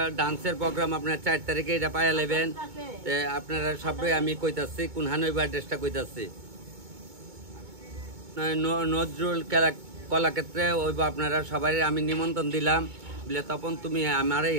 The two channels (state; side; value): late; left; 2.2 ms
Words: ডান্সের প্রোগ্রাম আপনার 4 তারিখে এটা পাইয়া নেবেন। আপনারা সবাই আমি কইতাছি কোনখানে ওই অ্যাড্রেসটা কইতাছি, নজরুল কলাক্ষেত্রে ওইব। আপনারা সবাই আমি নিমন্ত্রণ দিলাম বলে তখন তুমি আমার